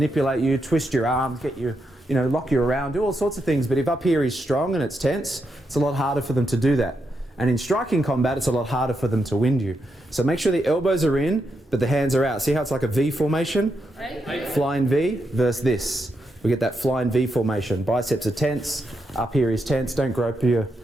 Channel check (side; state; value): both; normal; correlation 0.83